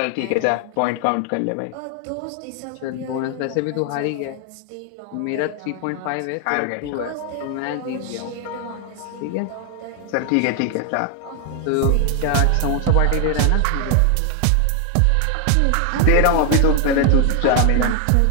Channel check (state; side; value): different; both; correlation 0.00